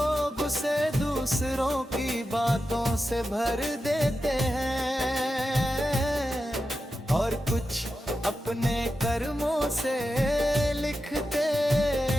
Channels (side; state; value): both; normal; correlation 0.90